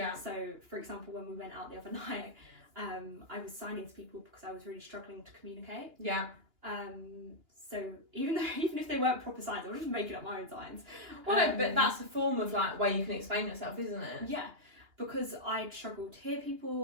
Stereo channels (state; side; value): late; left; 2.9 ms